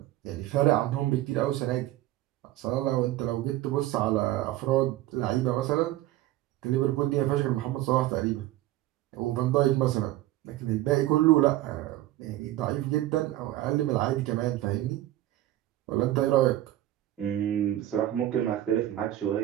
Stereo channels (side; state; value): left; quieter; 14.9 dB